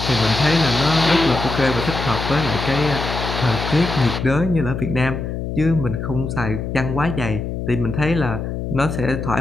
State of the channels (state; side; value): noise; left; hum, 5 dB below the sound